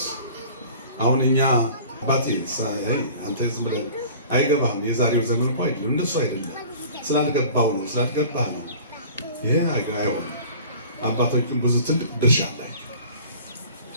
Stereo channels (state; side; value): inverted; both; correlation -0.45